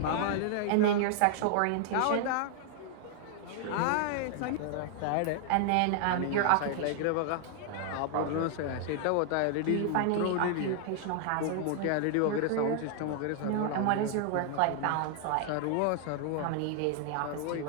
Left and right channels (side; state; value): both; different; correlation 0.00